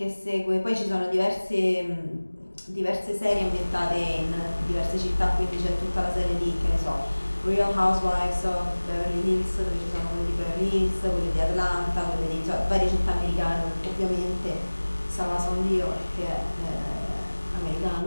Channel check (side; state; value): both; inverted; correlation -1.00